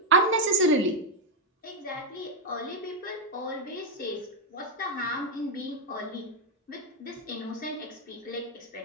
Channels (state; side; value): normal; both; correlation 0.02